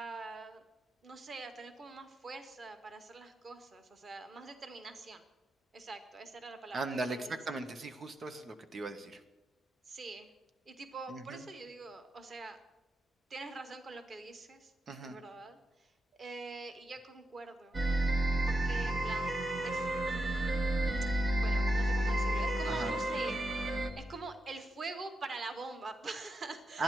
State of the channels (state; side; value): normal; both; correlation 0.87